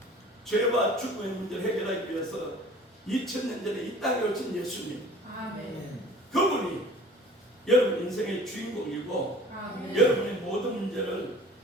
죄와 죽음의 문제를 해결하기 위해서 2000년 전에 이 땅에 오신 예수님, 아멘. 그분이 여러분 인생의 주인공이고 아멘. 여러분의 모든 문제를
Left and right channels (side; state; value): both; normal; correlation 0.46